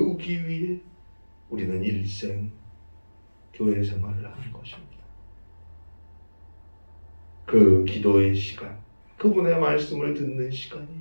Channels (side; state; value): both; inverted; correlation -1.00